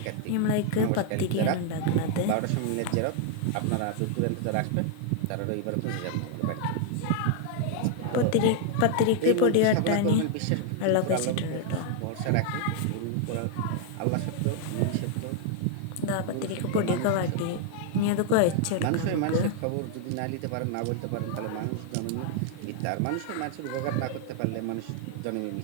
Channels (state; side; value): different; both; correlation 0.00